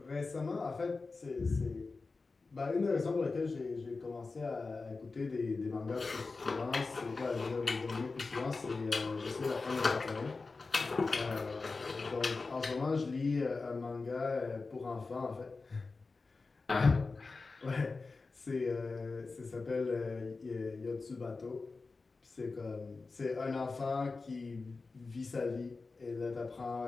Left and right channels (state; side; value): quieter; right; 4.0 dB